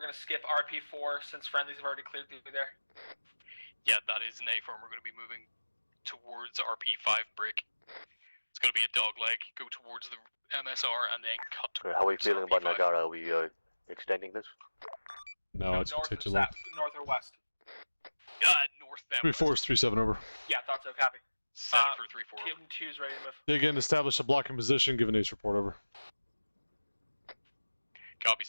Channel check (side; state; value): both; inverted; correlation -1.00